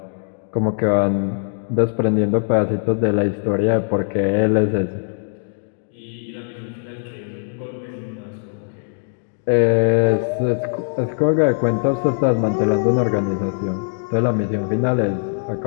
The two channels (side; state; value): right; silent; digital silence